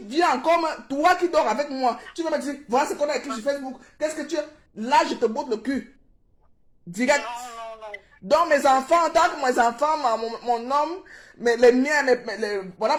viens comme toi qui dors avec moi, tu vas me dire, voilà ce qu'on a écrit sur Facebook, qu'est-ce que tu es? Là, je te botte le cul. Direct. Non. Donc, mes enfants, tant que mes enfants, mon homme, les miens, voilà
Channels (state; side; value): identical; both; correlation 1.00